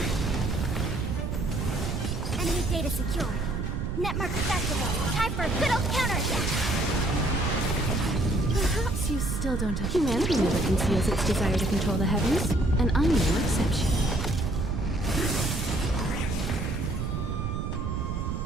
Enemy data secure. Netmark activated. Time for a good old counterattack. Perhaps you still don't have... Humanity never conceals its desire to control the heavens, and I'm no exception.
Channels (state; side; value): noise; right; rumble, 2 dB below the sound